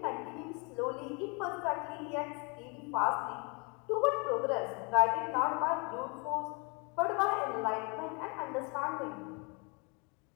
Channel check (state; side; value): quieter; right; 31.9 dB